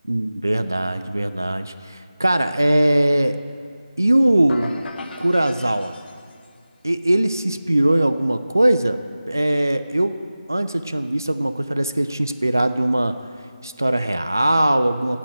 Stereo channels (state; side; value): inverted; both; correlation -0.96